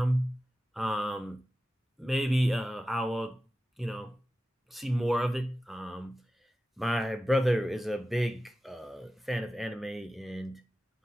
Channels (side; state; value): both; normal; correlation 0.94